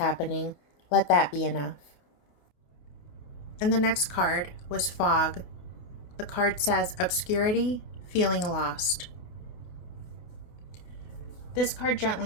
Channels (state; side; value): late; right; 28 ms